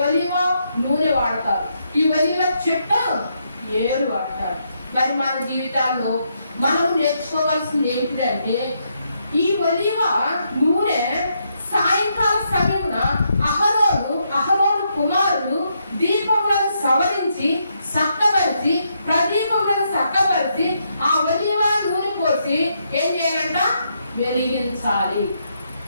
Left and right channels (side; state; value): both; inverted; correlation -0.78